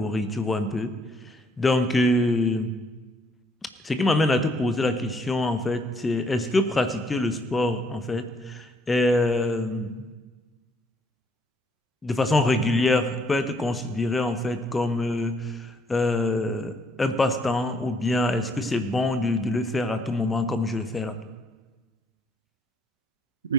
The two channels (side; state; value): both; normal; correlation 0.68